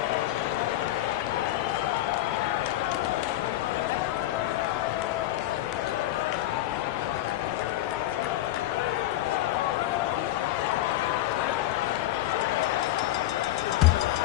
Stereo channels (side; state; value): right; quieter; 14.8 dB